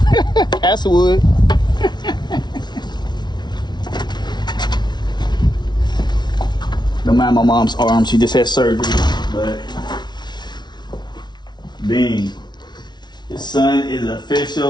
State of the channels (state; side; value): late; right; 0.20 ms